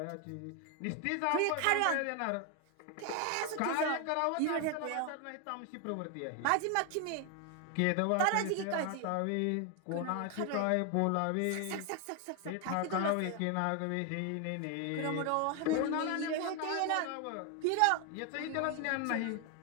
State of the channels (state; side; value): different; both; correlation 0.01